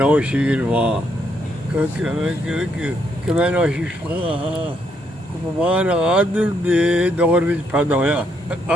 وہاں کہ میں نوشیر مان عادل دے دور میں پیدا ہوا۔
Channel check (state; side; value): normal; both; correlation 0.74